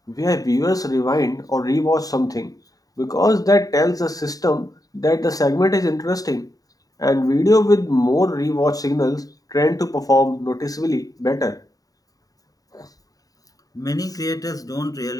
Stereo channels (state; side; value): late; right; 0.18 ms